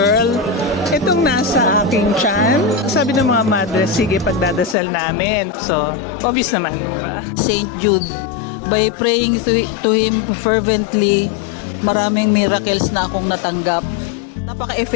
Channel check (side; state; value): right; drops out; at 4.8 s